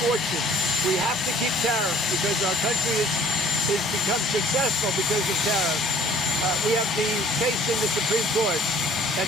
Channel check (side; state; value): both; normal; correlation 0.56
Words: fortune. We have to keep tariffs because our country has become successful because of tariffs. We have the case in the Supreme Court.